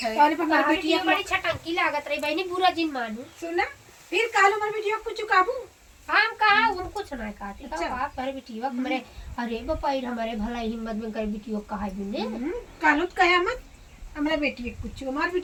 है। और पर हमारी बेटी बिटिया बड़ी छटंकी लागत रही बहनी बुरा जिन मानू सुना फिर कालो हमारी बिटिया कुछ काबू हम कहा उन कुछ ना काटे अच्छा। तो बाप करे बेटीवा हमरे अरे बपाई हमारे भला हिम्मत में करे बेटीवा कहा बिने कालो कयामत हमरा बेटी कुछ हमारी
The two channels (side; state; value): both; identical; correlation 1.00